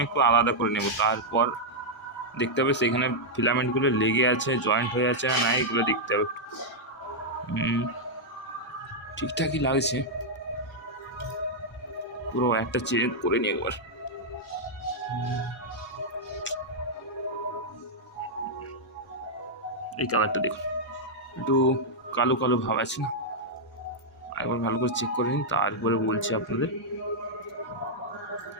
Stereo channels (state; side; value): normal; both; correlation -0.05